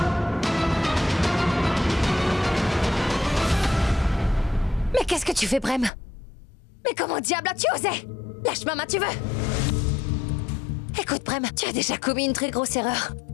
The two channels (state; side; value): drops out; right; at 5.9 s